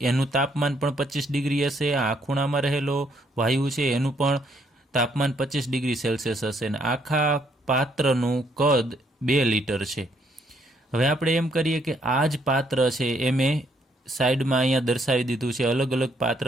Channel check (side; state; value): both; normal; correlation 0.70